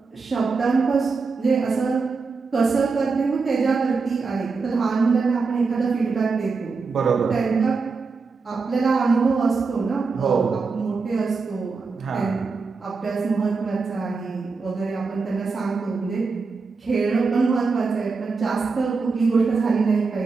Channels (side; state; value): left; quieter; 4.5 dB